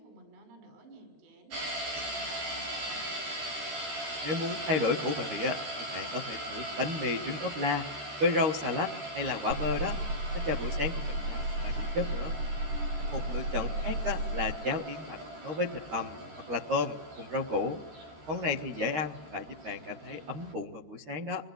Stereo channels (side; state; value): left; late; 13 ms